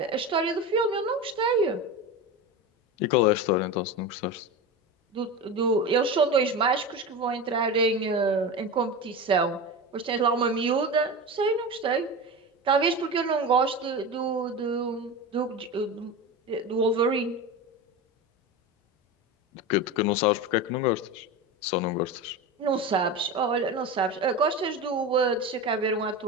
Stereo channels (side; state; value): both; normal; correlation 0.25